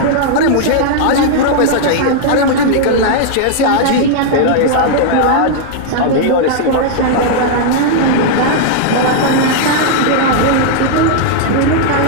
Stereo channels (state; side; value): different; both; correlation -0.01